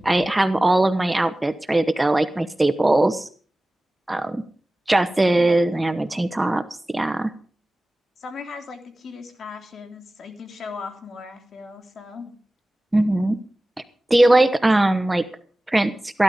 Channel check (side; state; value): both; normal; correlation 0.97